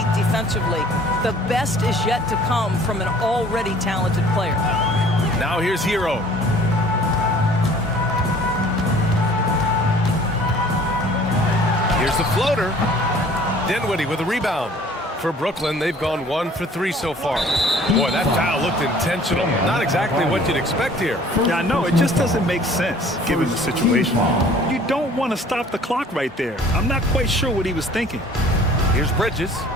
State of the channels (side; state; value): both; normal; correlation 0.52